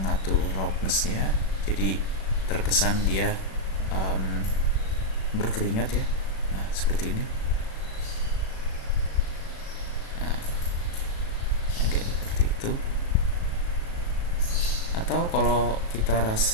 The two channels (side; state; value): right; late; 36 ms